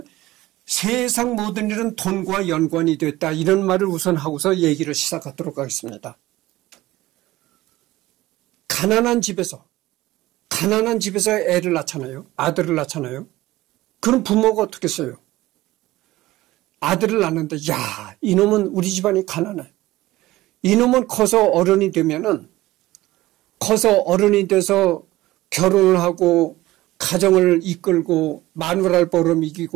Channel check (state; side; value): quieter; left; 17.3 dB